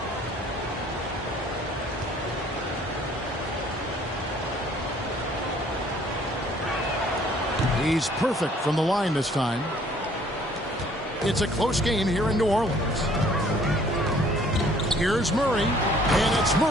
He He's perfect from the line this time. It's a close game here in New Orleans. Here's Murray, and it's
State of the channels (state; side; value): normal; both; correlation 0.58